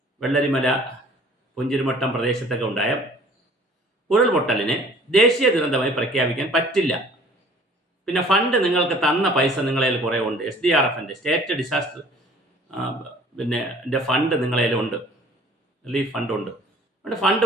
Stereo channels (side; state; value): both; normal; correlation 0.52